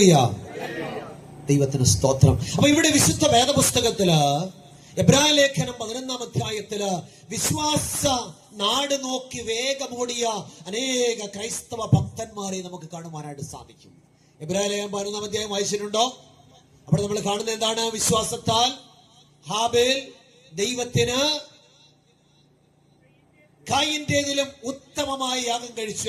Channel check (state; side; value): identical; both; correlation 1.00